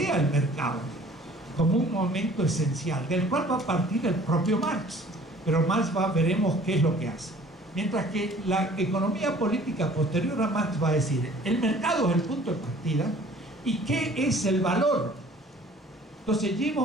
el mercado como un momento esencial, del cual va a partir el propio Marx, pero Marx veremos qué es lo que hace. Mientras que la economía política posterior a Marx va a decir, el mercado es el punto de partida, ¿y qué es el valor? Entonces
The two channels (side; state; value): both; normal; correlation 0.52